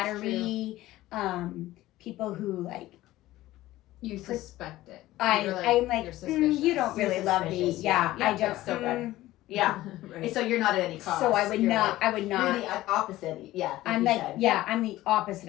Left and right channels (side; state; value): right; quieter; 16.2 dB